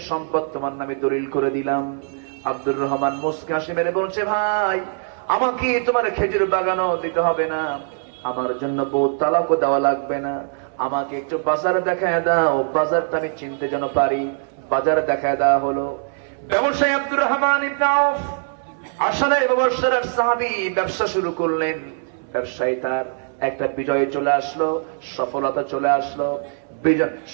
সম্পদ তোমার নামে দলিল করে দিলাম। আব্দুর রহমান মুস্কি হাসি মেরে বলছে, ভাই আমাকে তোমার খেজুর বাগানও দিতে হবে না, আমার জন্য বউ তালাকও দেওয়া লাগবে না, আমাকে একটু বাজার দেখায় দাও, বাজারটা আমি চিনতে যেন পারি। বাজার দেখায় দেওয়া হলো। ব্যবসায়ী আব্দুর রহমান ইবনে আউফ আসলে ব্যবসার সাহাবী ব্যবসা শুরু করলেন। ব্যবসায়ী তার একটা বিজয় চলে আসলো, সফলতা চলে আসলো,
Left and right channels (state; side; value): silent; left; 64 dB below the other